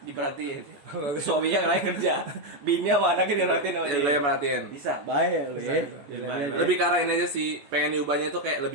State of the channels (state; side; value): late; left; 14 ms